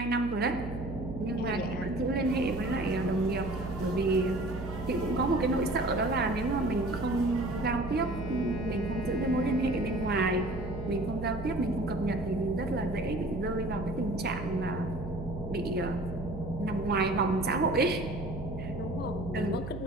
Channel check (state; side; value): noise; right; hum, 8 dB below the sound